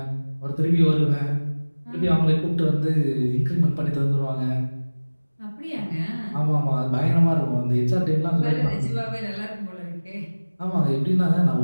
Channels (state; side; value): inverted; both; correlation -1.00